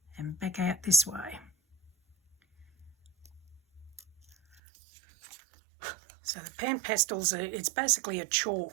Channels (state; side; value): drops out; left; at 4.6 s